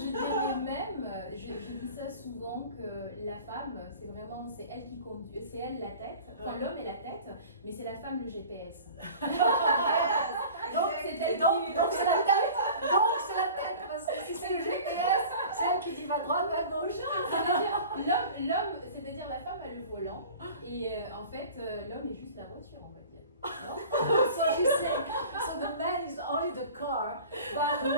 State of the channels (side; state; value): both; inverted; correlation -0.42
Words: dirais même, je dis ça souvent, que la femme, c'est elle qui conduit, c'est elle la tête, enfin l'homme est la tête, mais c'est la femme le GPS. Donc c'est elle qui... Donc c'est la tête. Donc c'est la tête, parce que si c'est le GPS, c'est elle qui dit va droite, va gauche. L'homme, c'est-à-dire la femme a le volant, et en fait l'homme est juste la voiture, on va dire. Non? So she's saying, so the man is only the car, but the